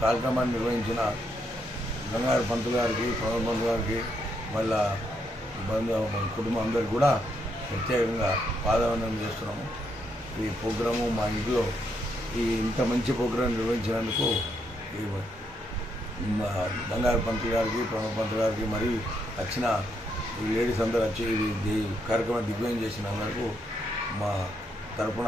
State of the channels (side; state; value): both; normal; correlation 0.77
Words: కార్యక్రమాన్ని నిర్వహించిన గంగాధర పంతులు గారికి, ప్రణవ్ పంతులు గారికి, వాళ్ళ కుటుంబం అందరికి కూడా ప్రత్యేకంగా పాదవందనం చేస్తున్నాము. ఈ ప్రోగ్రాము మా ఇంట్లో ఇంత మంచి ప్రోగ్రాం నిర్వహించినందుకు గంగాధర పంతులు గారికి, ప్రణవ్ పంతులు గారికి, మరి వచ్చిన ఈ లేడీస్ అందరూ వచ్చి ఈ కార్యక్రమం దిగ్విజయం చేసిన అందరికీ మా తరఫున,